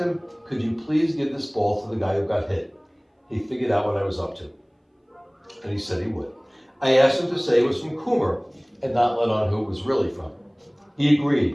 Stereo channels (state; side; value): identical; both; correlation 1.00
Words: could you please give this ball to the guy who got hit? He figured out what I was up to, and he said he would. I asked him to say it was from Coomer and not let on who it was really from. He